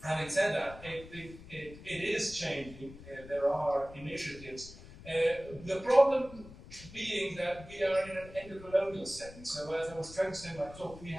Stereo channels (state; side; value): noise; left; rumble, 17 dB below the sound